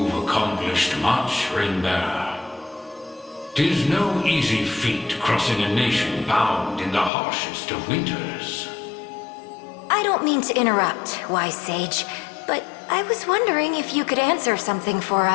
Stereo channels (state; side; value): drops out; right; at 7.1 s